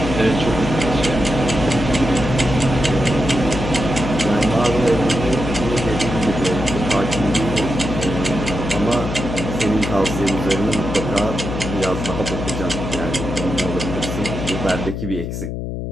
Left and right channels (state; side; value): noise; left; hum, 5 dB below the sound